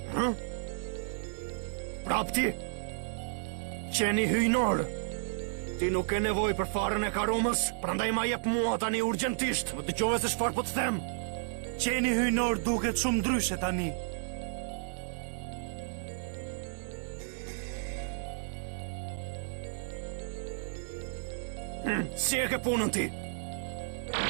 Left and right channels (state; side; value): silent; left; digital silence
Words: Kapti, qeni hyjnor. Ti nuk e nevoj për farën e karumës, prandaj ma jep mua tani urgjentisht. Më dëgjove se çfarë po të them. Qeni hyjnor duket shumë ndryshe tani. Si e ke punën ti?